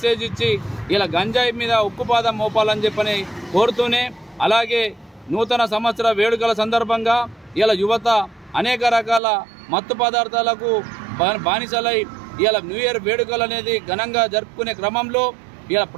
ఇచ్చి ఇలా గంజాయి మీద ఉక్కుపాదం మోపాలని చెప్పని కోరుతూనే, అలాగే నూతన సంవత్సర వేడుకల సందర్భంగా ఇలా యువత అనేక రకాల మత్తు పదార్థాలకు బానిసలై ఇలా న్యూ ఇయర్ వేడుకలు అనేది ఘనంగా జరుపుకునే క్రమంలో ఇలా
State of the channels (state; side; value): drops out; left; at 9.2 s